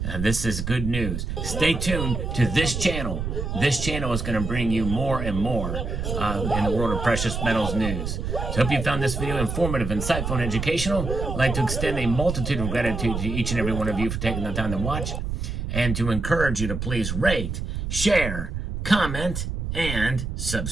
This is good news. Stay tuned to this channel. This channel is going to bring you more and more in the world of precious metals news. So hope you found this video informative, insightful, and educational. I'd like to extend a multitude of gratitude to each and every one of you for taking the time to watch, and to encourage you to please rate, share, comment, and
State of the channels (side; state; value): right; noise; rumble, 4 dB below the sound